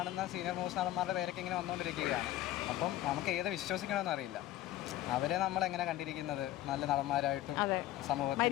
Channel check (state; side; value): quieter; right; 14.4 dB